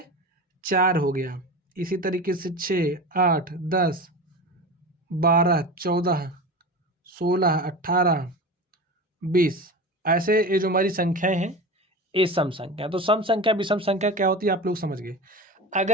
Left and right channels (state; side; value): normal; both; correlation 0.29